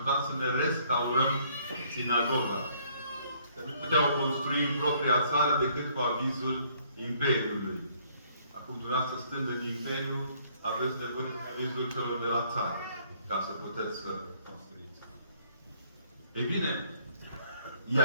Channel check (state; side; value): inverted; both; correlation -0.64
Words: să ne restaurăm sinagoga. Că nu puteau construi în propria țară decât cu avizul Imperiului. Acum, dumneavoastră, stând în Imperiu, aveți nevoie de avizul celor de la țară, ca să puteți să construiți. Ei bine,